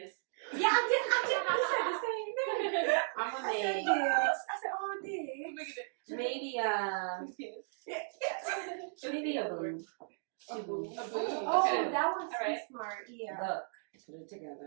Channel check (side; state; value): left; silent; digital silence